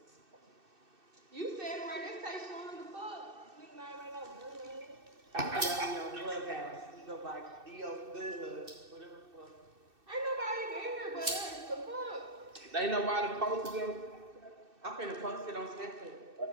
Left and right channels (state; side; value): late; left; 2.6 ms